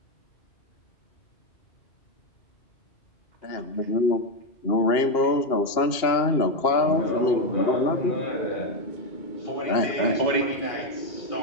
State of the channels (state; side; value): late; right; 2.8 ms